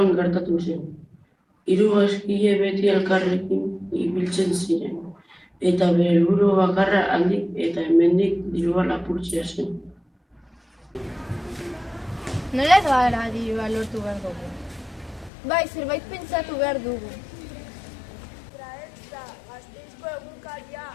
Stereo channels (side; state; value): right; drops out; at 15.3 s